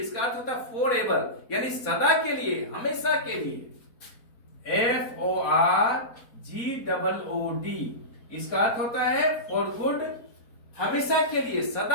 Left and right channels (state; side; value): late; right; 4.2 ms